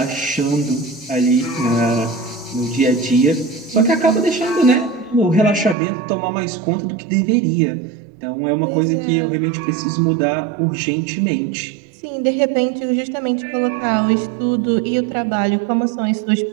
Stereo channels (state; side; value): drops out; left; at 5.8 s